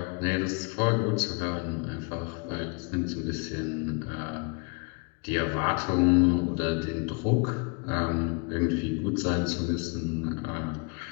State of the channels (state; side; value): quieter; right; 33.6 dB